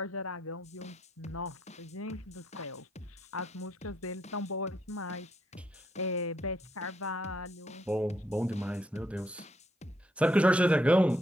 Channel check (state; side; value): normal; both; correlation 0.75